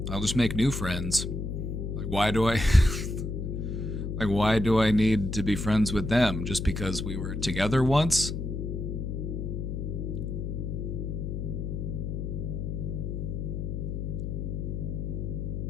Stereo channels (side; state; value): left; noise; hum, 3 dB below the sound